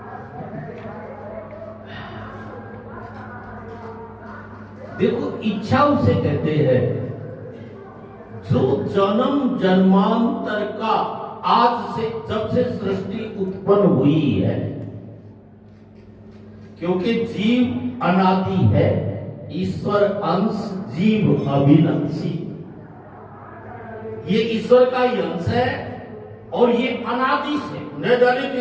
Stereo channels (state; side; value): identical; both; correlation 1.00